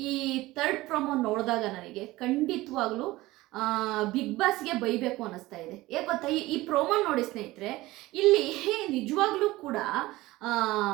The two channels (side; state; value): left; quieter; 18.6 dB